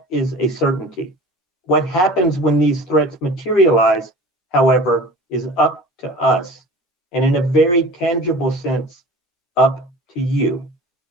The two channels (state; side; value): normal; both; correlation 0.40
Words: is a certainty. What happens when these threats materialize, however, is up to us, and in a very tangible sense, up to you.